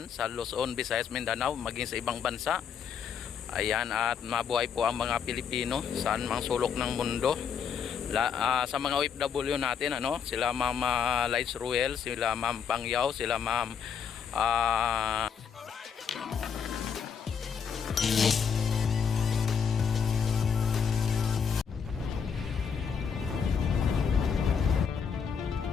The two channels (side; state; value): right; quieter; 6.9 dB